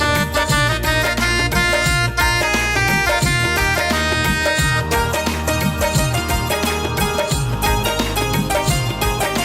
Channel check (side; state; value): both; identical; correlation 1.00